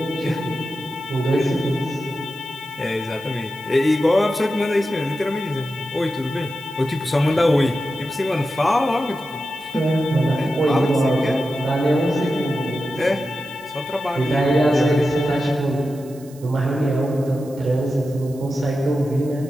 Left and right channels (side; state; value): right; noise; hiss, 23 dB below the sound